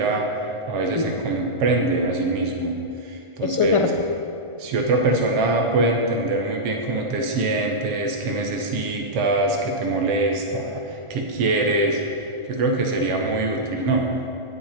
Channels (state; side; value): late; left; 1.4 ms